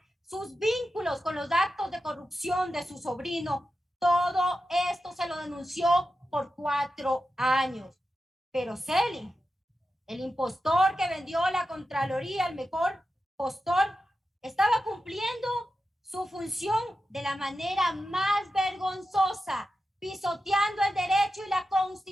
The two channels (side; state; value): both; normal; correlation 0.91